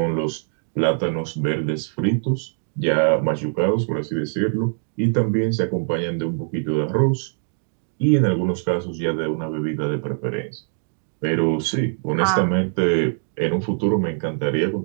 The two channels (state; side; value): silent; left; digital silence